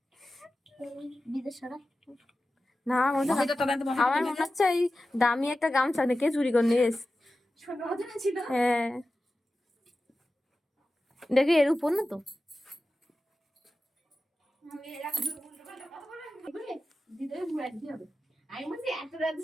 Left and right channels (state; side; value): normal; both; correlation 0.94